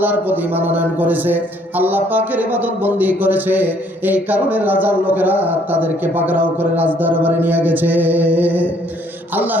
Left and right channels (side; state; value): both; normal; correlation 0.63